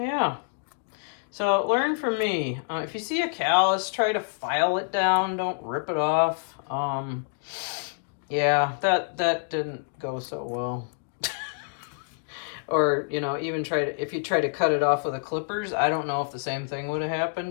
so learn from me. If you see a callus, try to file it down, don't rip it off. Yeah, that didn't go so well. Or, you know, even if you try to cut it off with the clippers, I don't know if the same thing would have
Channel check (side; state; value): right; silent; digital silence